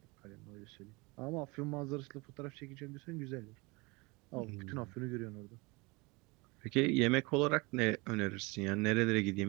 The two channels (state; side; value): quieter; left; 26.1 dB